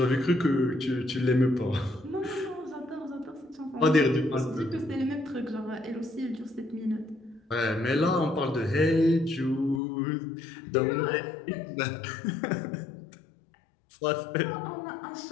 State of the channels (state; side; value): drops out; right; at 9.8 s